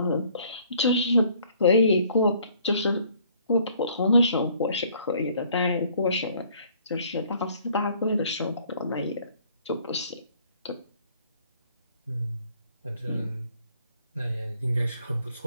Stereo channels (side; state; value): both; inverted; correlation -0.60